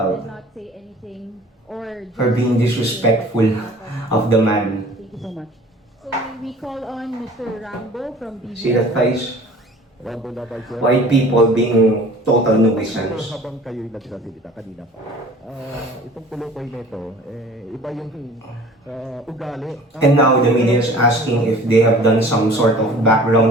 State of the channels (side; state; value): both; normal; correlation 0.47